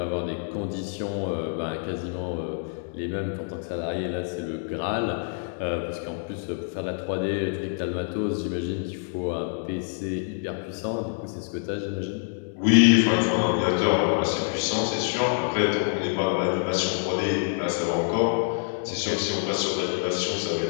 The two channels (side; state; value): right; silent; digital silence